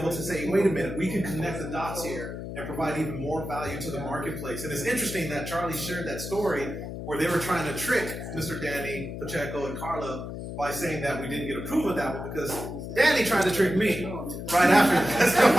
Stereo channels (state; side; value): noise; left; hum, 8 dB below the sound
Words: to say, "Wait a minute, we can connect the dots here and provide even more value to the marketplace." And it's interesting that Charlie shared that story where they were trying to trick Mr. Danny Pacheco and Carla by saying that we didn't get approval of that one, because Danny tried to trick me right after